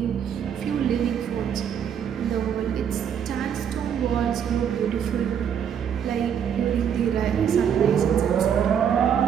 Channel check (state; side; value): quieter; left; 8.3 dB